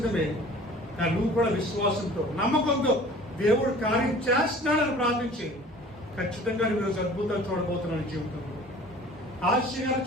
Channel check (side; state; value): both; normal; correlation 0.46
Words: కానీ నువ్వు కూడా విశ్వాసంతో నమ్మకంతో దేవుడు కార్యం చేస్తున్నాడని ప్రార్థించి ఖచ్చితంగా నువ్వు ఈరోజు అద్భుతాలు చూడబోతున్నావు. జీవితంలో ఆశ్చర్యాలు